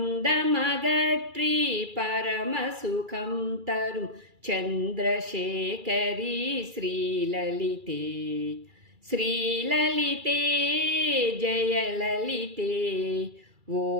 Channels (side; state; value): left; late; 2.3 ms